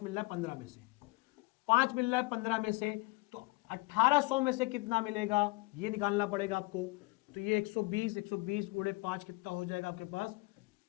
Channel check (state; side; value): quieter; right; 24.0 dB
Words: मिल रहा है 15 में से, 5 मिल रहा है 15 में से, तो 1800 में से कितना मिलेगा ये निकालना पड़ेगा आपको। तो ये 120 गुणे 5 कितना हो जाएगा आपके पास,